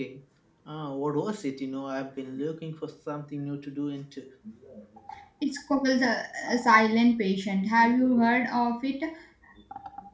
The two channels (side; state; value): both; identical; correlation 1.00